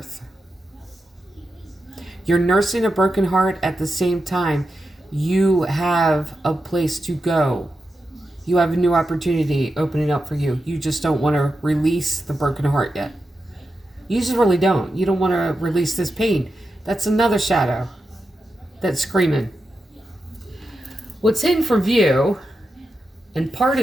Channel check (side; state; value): both; normal; correlation 0.89